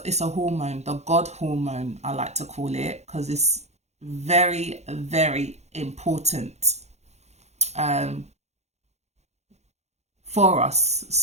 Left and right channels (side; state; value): left; late; 0.32 ms